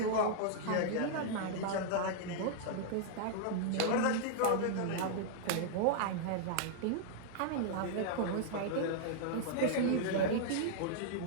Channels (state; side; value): different; both; correlation -0.01